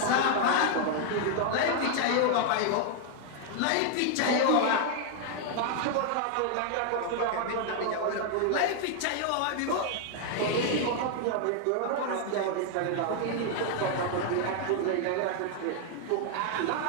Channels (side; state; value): both; different; correlation 0.00